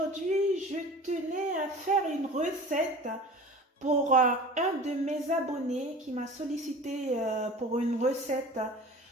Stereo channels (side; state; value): both; normal; correlation 0.39